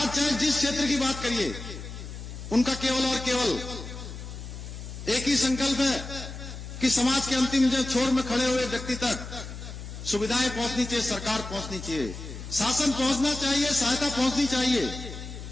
चाहे जिस क्षेत्र की बात करिए, उनका केवल और केवल एक ही संकल्प है कि समाज के अंतिम छोर में खड़े हुए व्यक्ति तक सुविधाएं पहुंचनी चाहिए, सरकार पहुंचनी चाहिए, शासन पहुंचना चाहिए, सहायता पहुंचनी चाहिए।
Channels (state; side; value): noise; left; hum, 10 dB below the sound